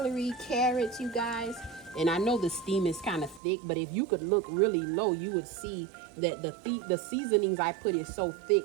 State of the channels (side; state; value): left; drops out; at 3.4 s